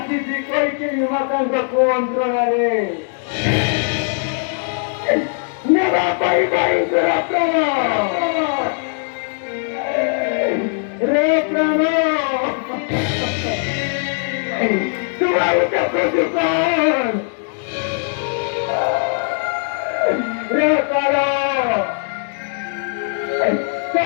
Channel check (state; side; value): silent; right; 60 dB below the other